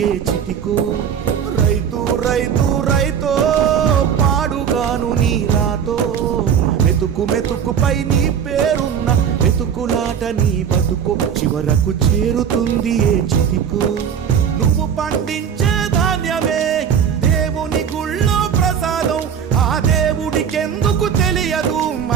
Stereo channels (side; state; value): left; quieter; 8.0 dB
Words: ఏ చితికో రైతు రైతు రైతో పాడుగాను నీ రాతో మెతుకు మెతుకుపై నీ పేరున్న వెతుకులాట నీ బతుకు చివరకు చేరుతుంది ఏ చితికో నువ్వు పండించే ధాన్యమే దేవుని గుళ్ళో ప్రసాదం ఆ దేవుడికెందుకు తెలియదు